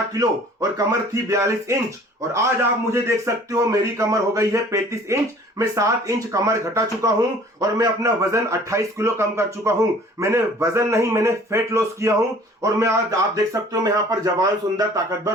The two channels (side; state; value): both; normal; correlation 0.51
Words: किलो और कमर थी 42 इंच, और आज आप मुझे देख सकते हो मेरी कमर हो गई है 35 इंच। मैं 7 इंच कमर घटा चुका हूं और मैं अपना वजन 28 किलो कम कर चुका हूं। मैंने वजन नहीं, मैंने फैट लॉस किया हूं, और मैं आज आप देख सकते हो मैं यहां पर जवान, सुंदर,